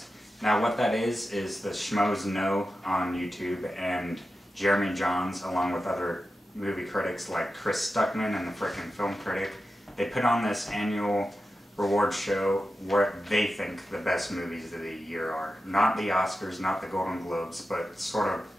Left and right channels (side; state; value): both; normal; correlation 0.92